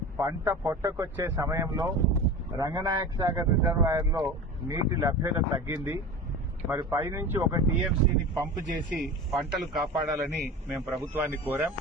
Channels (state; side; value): normal; both; correlation 0.32